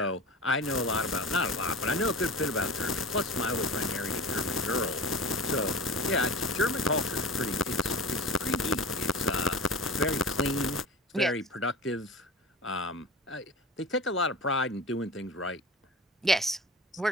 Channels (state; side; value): normal; both; correlation 0.34